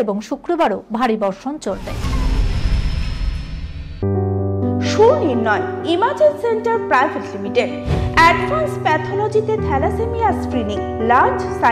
এবং শুক্রবারও ভারী বর্ষণ চলবে। Sunirnoy imaging centre private limited advance প্যাথোলজিতে thalassaemia screening, large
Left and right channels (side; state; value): both; identical; correlation 1.00